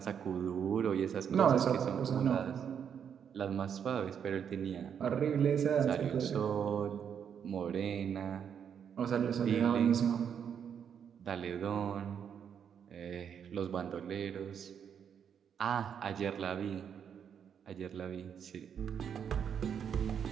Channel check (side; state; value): left; quieter; 7.9 dB